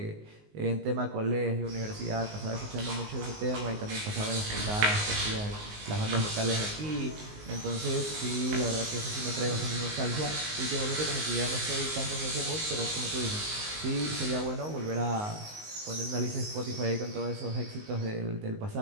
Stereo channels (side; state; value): left; late; 19 ms